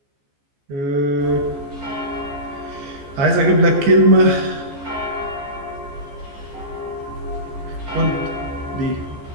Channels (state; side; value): late; left; 14 ms